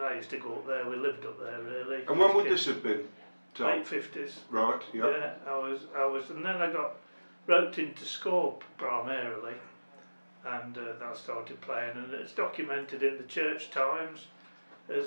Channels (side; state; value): both; inverted; correlation -1.00